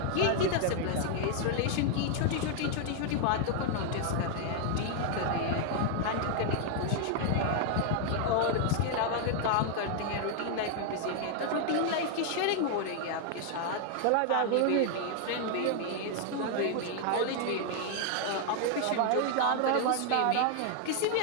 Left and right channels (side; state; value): both; different; correlation 0.00